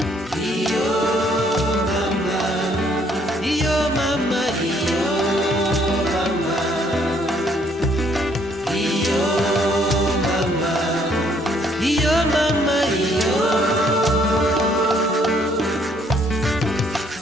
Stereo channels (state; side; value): normal; both; correlation 0.66